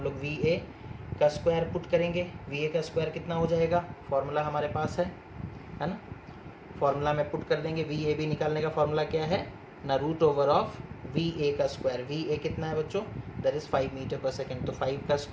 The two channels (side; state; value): both; identical; correlation 1.00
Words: लोग VA का स्क्वायर पुट करेंगे, VA का स्क्वायर कितना हो जाएगा, फॉर्मूला हमारे पास है ना, फॉर्मूला में पुट कर देंगे। VAB निकालने का फॉर्मूला क्या है ना, रूट ओवर ऑफ VA का स्क्वायर, VA कितना है बच्चों, that is 5 metre per second, तो 5 का